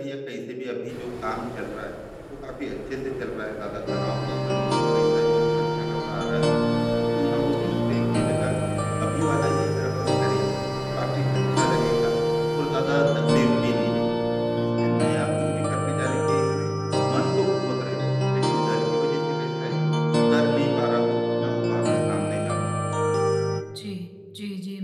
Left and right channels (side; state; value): both; identical; correlation 1.00